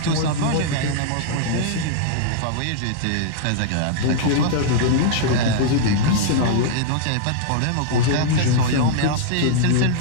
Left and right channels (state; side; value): different; both; correlation -0.01